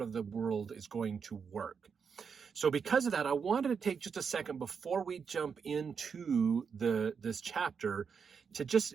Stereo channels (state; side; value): quieter; left; 6.2 dB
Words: of the world is going to work. So because of that, I wanted to take just a second before we jump into this chapter to just